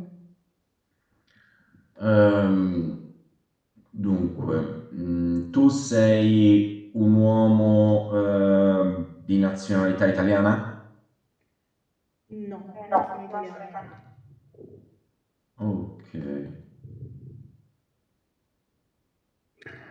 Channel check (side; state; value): both; identical; correlation 1.00